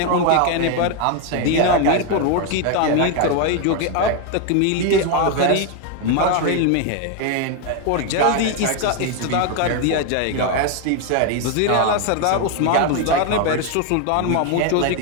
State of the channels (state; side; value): different; both; correlation 0.01